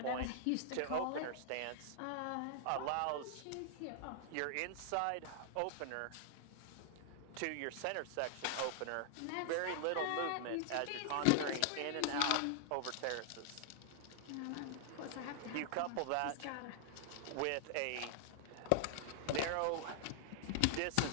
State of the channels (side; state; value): both; different; correlation -0.01